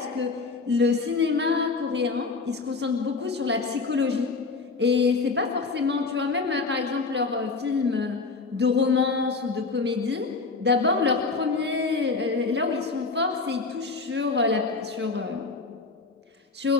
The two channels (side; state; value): right; quieter; 4.2 dB